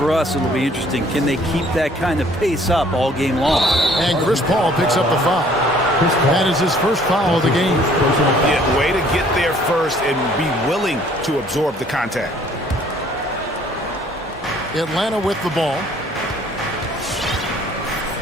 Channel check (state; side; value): normal; both; correlation 0.58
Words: us, it'll be interesting. Can they keep that kind of pace up all game long? And Chris Paul picks up the foul. That is his first foul of the game. Yeah, way to get there first and be willing to absorb the contact. Atlanta with the ball.